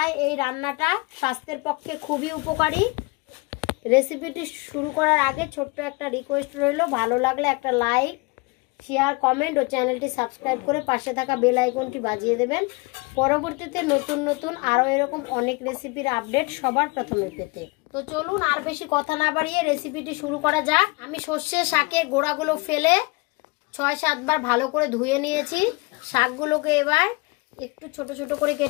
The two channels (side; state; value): right; quieter; 26.7 dB